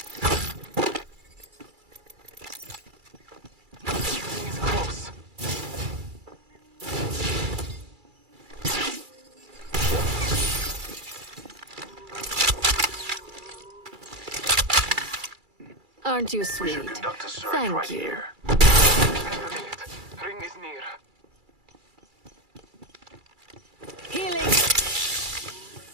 It's close. Aren't you We sweet? should conduct a search Thank right you. here. Spend a minute. Ring is near.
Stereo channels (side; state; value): left; late; 2.3 ms